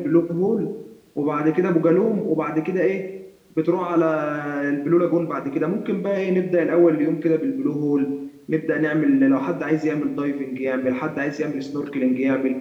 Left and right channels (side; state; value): both; identical; correlation 1.00